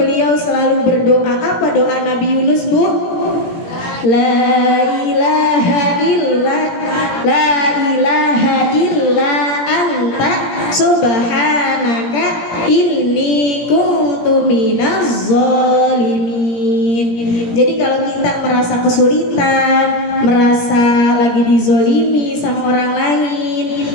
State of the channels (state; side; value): late; right; 17 ms